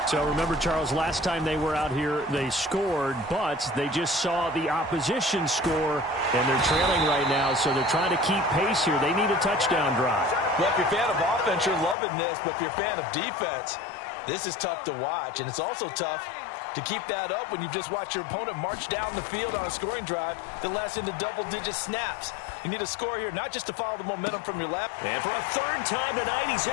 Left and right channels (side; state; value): right; drops out; at 12.0 s